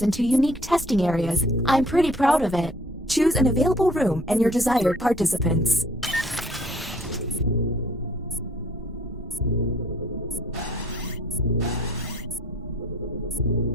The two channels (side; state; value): both; normal; correlation 0.57